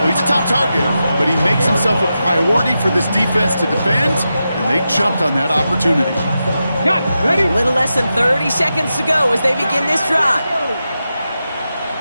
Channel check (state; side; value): inverted; both; correlation -0.89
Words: he's a top target, but he makes himself a priority for this defense to defend, and they jumped on that opportunity. Got ready? A little less than 30 seconds to go as they begin this drive.